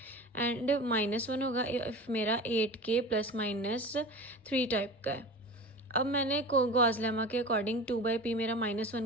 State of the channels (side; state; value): both; normal; correlation 0.33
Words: एंड -1 होगा इफ़ मेरा 8k ± 3 टाइप का है। अब मैंने गॉस लेमा के अकॉर्डिंग 2/p मेरा